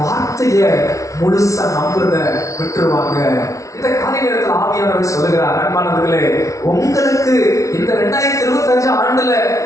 வார்த்தையை முழுசா நம்புறத விட்டுருவாங்க. இந்த காலை நேரத்தில் ஆவியானவர் சொல்லுகிறார், அன்பானவர்களே, உங்களுக்கு இந்த 2025 ஆண்டுல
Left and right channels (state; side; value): late; right; 0.15 ms